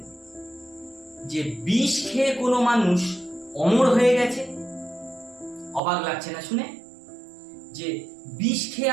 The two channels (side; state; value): left; drops out; at 5.8 s